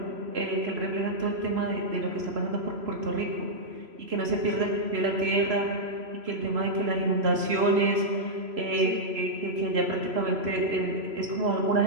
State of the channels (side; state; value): left; late; 3.0 ms